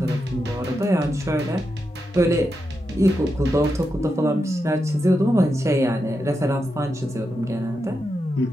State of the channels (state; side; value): normal; both; correlation 0.87